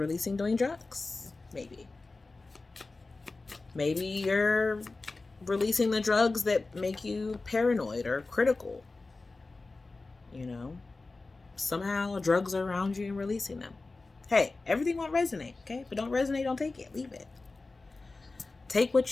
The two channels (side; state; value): right; quieter; 3.5 dB